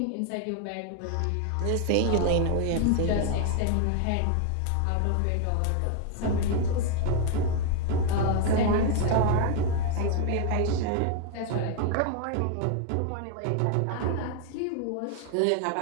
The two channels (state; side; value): different; both; correlation 0.00